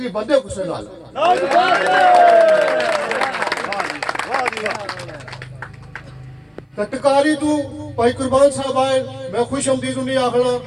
बंदे गुस्से नाल। टकारी तू भाई कुर्बान साहब आए, मैं खुश आमदीद नहीं आखना,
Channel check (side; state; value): both; identical; correlation 1.00